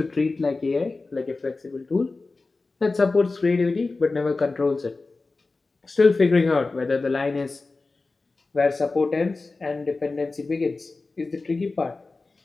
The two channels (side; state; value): right; quieter; 3.6 dB